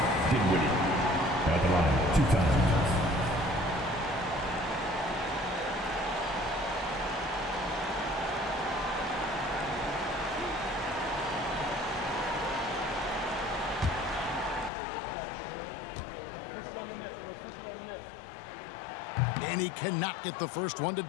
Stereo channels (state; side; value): drops out; right; at 14.7 s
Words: Dinwiddie. At the line, 2 times. And he cannot get the first one to